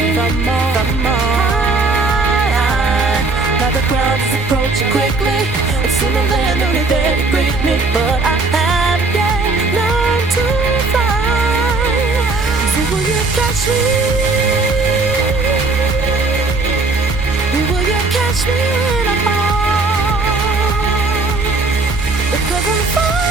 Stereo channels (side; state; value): left; quieter; 3.5 dB